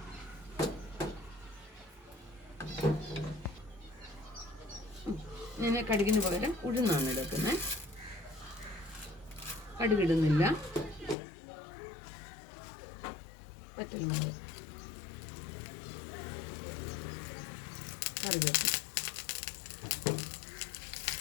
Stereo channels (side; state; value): right; drops out; at 11.2 s